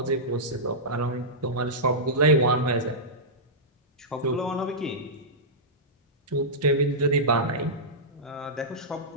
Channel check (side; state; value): both; normal; correlation -0.12